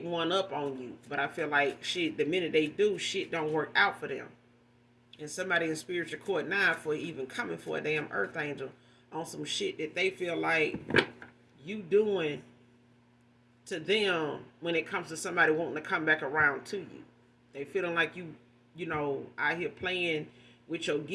one up on you. But I feel like shit, the minute they do, shit don't work out for them. And somebody in spiritual court now for even coming for a damn earth angel on some shit that they feel like you doing to them when it comes to somebody wanting to come back around to you. They feeling like out here playing with your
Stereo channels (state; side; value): identical; both; correlation 1.00